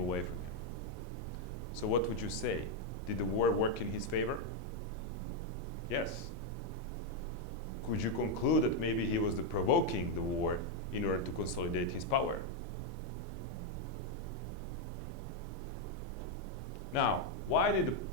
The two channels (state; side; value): normal; both; correlation 0.02